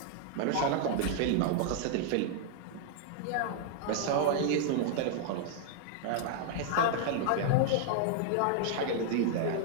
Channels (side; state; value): both; different; correlation 0.00